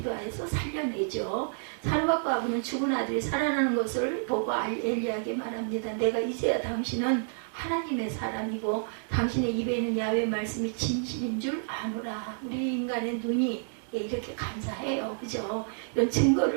살려내죠. 사르밧 과부는 죽은 아들이 살아나는 것을 보고 엘리야에게 말합니다. 내가 이제야 당신은 하나님의 사람이고 당신의 입에 있는 야훼의 말씀이 진실인 줄 아노라. 우리 인간의 눈이 이렇게 간사해요. 그죠? 이런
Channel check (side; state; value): left; silent; digital silence